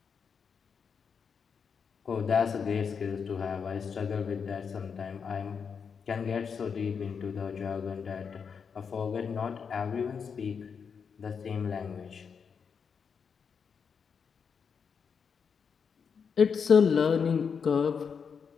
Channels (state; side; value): quieter; right; 6.3 dB